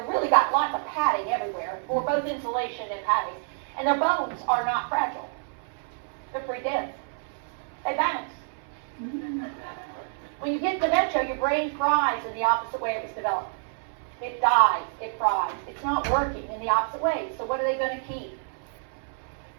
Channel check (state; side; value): silent; left; 60 dB below the other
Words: really got lots of padding everywhere for both insulation and padding. And their bones are not fragile. They're pretty dense. They bounce. When you get dementia, your brain fries in the opposite way it was developed. It dies. It fries. It's not working in the opposite way. So what are they going to keep?